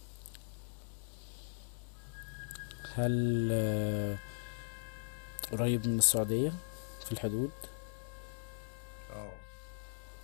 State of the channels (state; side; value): silent; right; digital silence